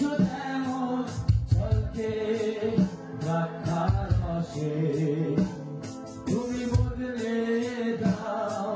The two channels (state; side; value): identical; both; correlation 1.00